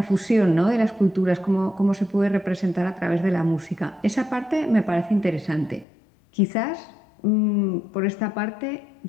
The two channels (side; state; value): right; drops out; at 5.9 s